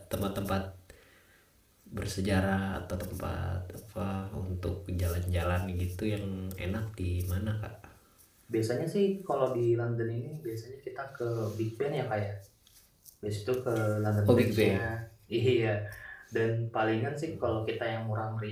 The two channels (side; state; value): both; identical; correlation 1.00